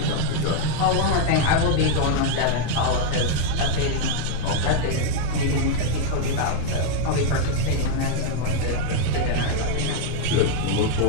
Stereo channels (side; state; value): both; different; correlation 0.00